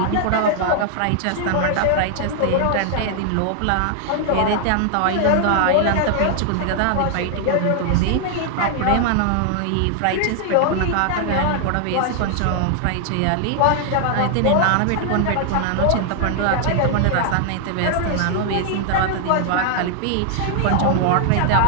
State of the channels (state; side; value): different; both; correlation 0.00